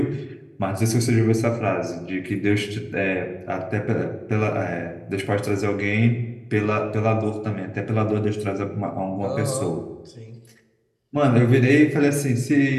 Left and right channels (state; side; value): identical; both; correlation 1.00